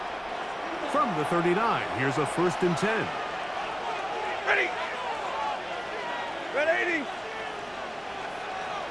From the 39, here's a 1st and 10. Ready. Red 80.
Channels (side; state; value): left; noise; hum, 29 dB below the sound